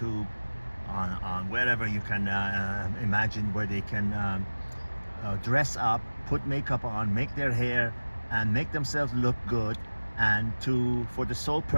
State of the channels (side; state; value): both; inverted; correlation -1.00